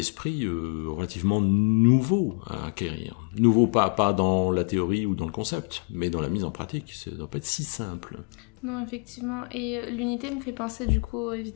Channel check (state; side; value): quieter; right; 35.1 dB